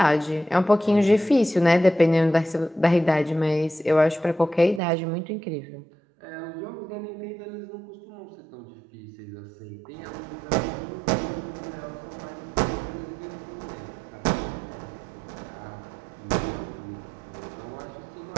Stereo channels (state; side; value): drops out; left; at 4.8 s